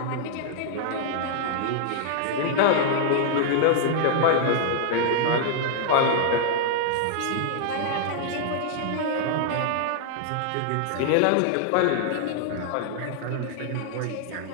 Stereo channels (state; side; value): different; both; correlation -0.01